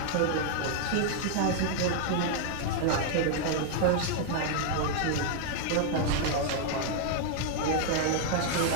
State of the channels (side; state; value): both; different; correlation -0.01